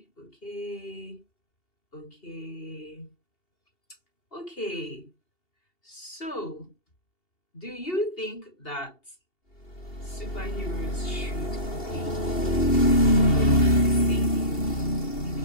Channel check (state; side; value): late; right; 2.8 ms